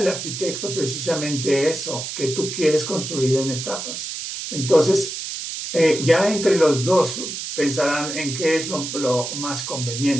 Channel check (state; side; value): noise; right; hiss, 6 dB below the sound